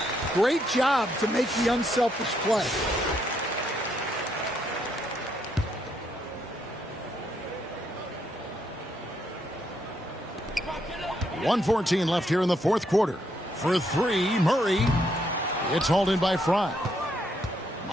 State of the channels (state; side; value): normal; both; correlation 0.75